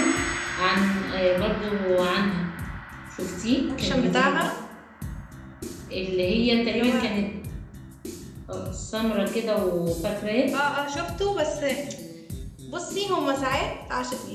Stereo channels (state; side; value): identical; both; correlation 1.00